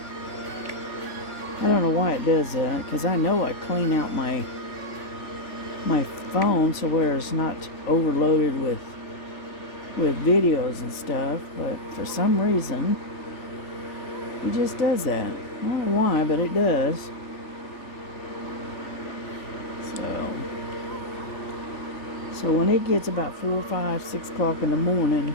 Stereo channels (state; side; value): late; right; 3.4 ms